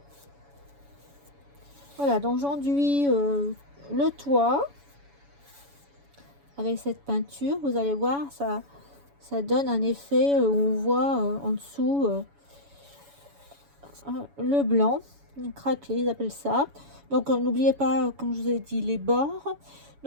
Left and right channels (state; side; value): late; left; 7.1 ms